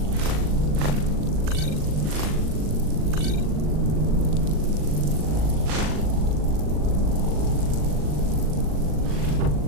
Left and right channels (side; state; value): left; late; 39 ms